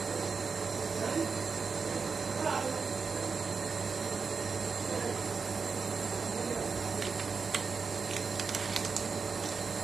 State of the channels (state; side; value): quieter; left; 5.2 dB